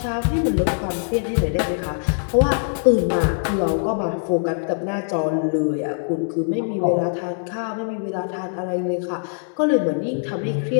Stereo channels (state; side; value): silent; right; digital silence